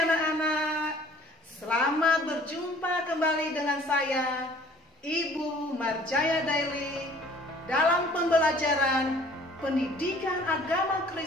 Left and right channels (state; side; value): normal; both; correlation 0.53